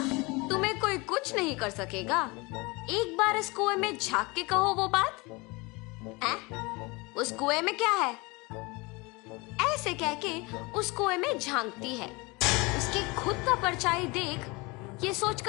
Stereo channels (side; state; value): right; quieter; 25.6 dB